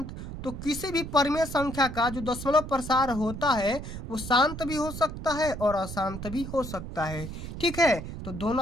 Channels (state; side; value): noise; right; rumble, 9 dB below the sound